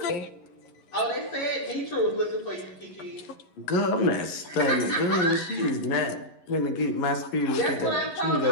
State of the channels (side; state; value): right; late; 11 ms